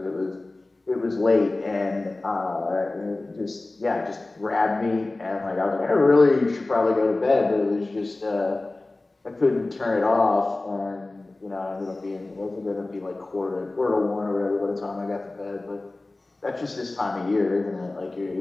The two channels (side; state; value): right; quieter; 3.0 dB